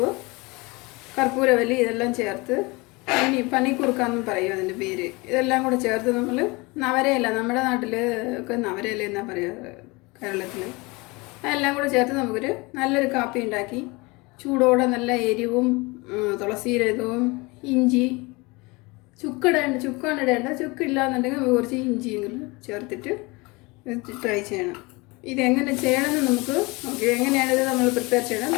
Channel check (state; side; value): quieter; right; 25.3 dB